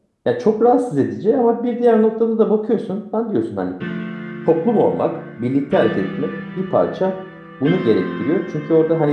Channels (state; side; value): identical; both; correlation 1.00